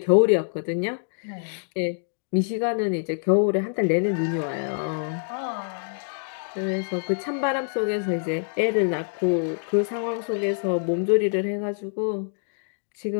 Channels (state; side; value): silent; right; digital silence